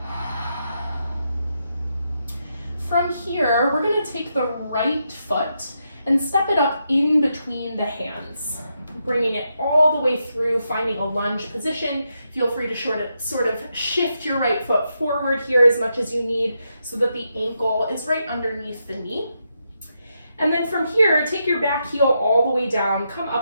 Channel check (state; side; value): inverted; both; correlation -0.83